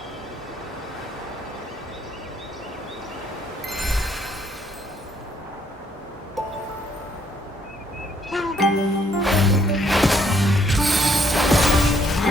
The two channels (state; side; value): normal; both; correlation 0.68